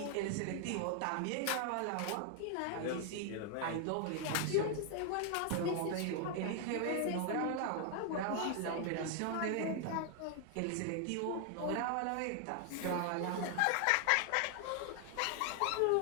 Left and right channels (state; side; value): different; both; correlation 0.00